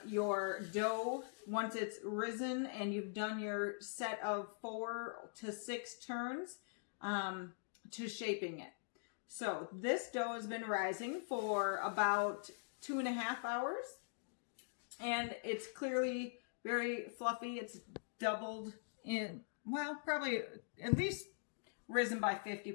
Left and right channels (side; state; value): right; silent; digital silence